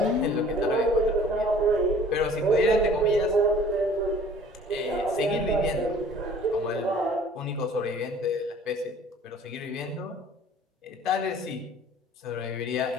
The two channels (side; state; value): both; normal; correlation 0.50